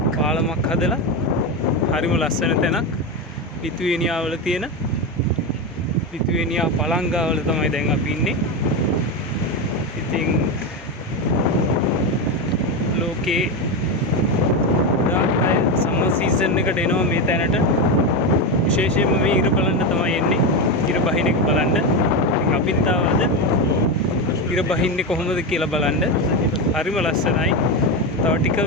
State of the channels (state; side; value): normal; both; correlation 0.14